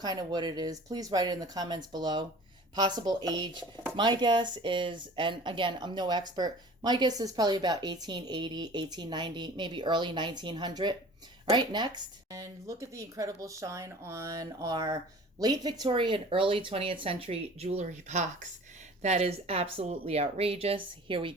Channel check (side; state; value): both; normal; correlation 0.44